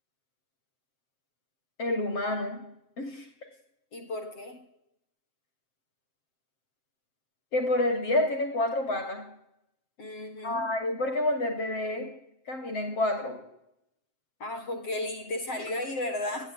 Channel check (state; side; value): late; right; 7.6 ms